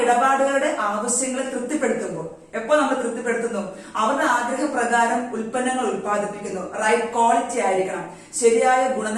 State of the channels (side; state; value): both; identical; correlation 1.00